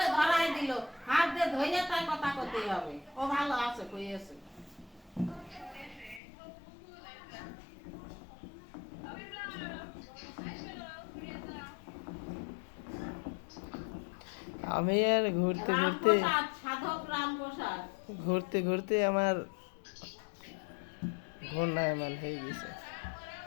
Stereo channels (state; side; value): drops out; right; at 6.2 s